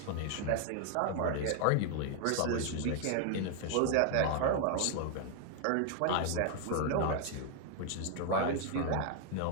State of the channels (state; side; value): different; both; correlation 0.00